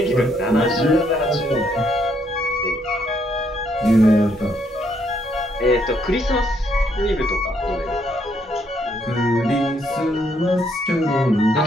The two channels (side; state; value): both; normal; correlation 0.72